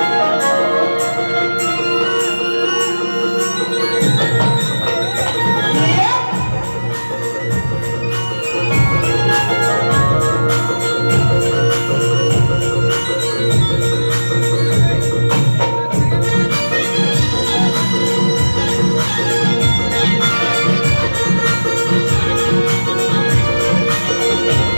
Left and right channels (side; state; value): both; inverted; correlation -1.00